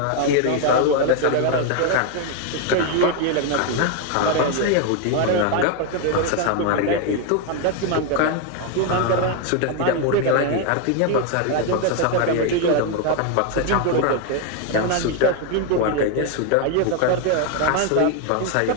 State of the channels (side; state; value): both; different; correlation 0.01